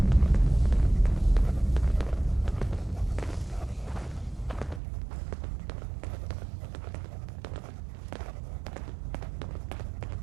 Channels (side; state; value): left; drops out; at 4.8 s